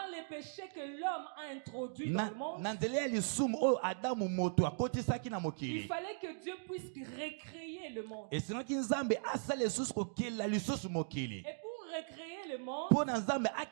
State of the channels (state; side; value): silent; left; digital silence